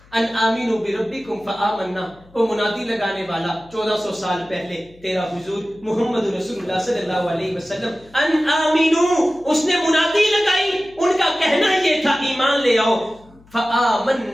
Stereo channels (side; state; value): left; noise; hum, 27 dB below the sound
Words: ان آمینوا بربکم فآمنا، وہ منادی لگانے والا 1400 سال پہلے تیرا حضور محمد رسول اللہ صلی اللہ علیہ وسلم، ان آمینوا، اس نے منادی لگائی، ان کا کہنا یہ تھا ایمان لے آؤ.